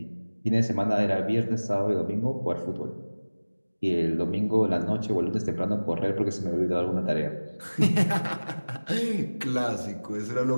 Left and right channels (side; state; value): both; inverted; correlation -1.00